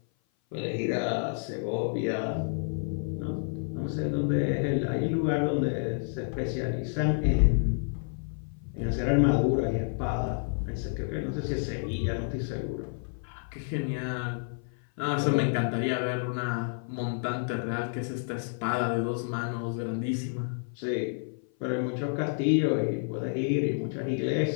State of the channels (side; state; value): right; silent; 55 dB below the other